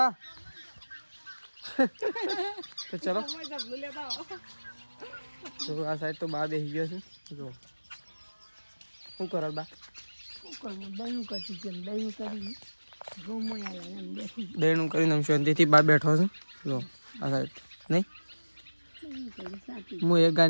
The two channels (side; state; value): both; inverted; correlation -1.00